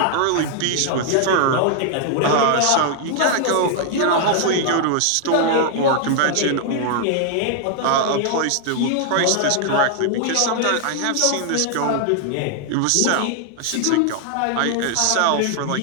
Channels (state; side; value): different; both; correlation 0.00